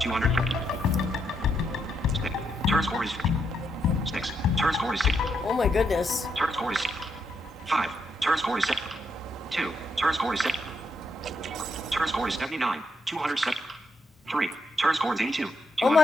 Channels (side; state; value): both; normal; correlation 0.79